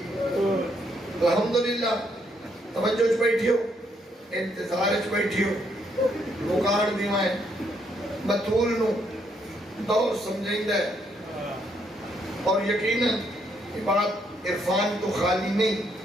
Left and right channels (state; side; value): normal; both; correlation 0.73